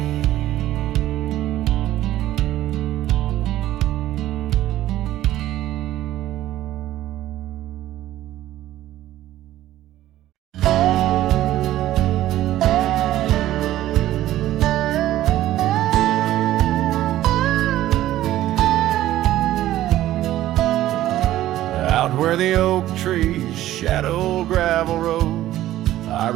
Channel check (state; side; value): quieter; left; 14.1 dB